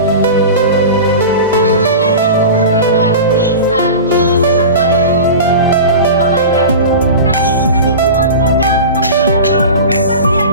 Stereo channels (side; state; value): both; inverted; correlation -0.31